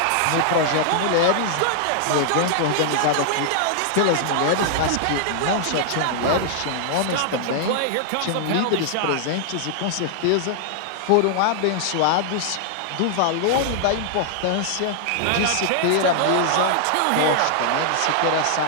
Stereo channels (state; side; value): different; both; correlation -0.01